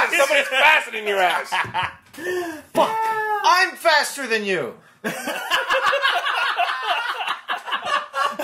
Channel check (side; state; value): both; identical; correlation 1.00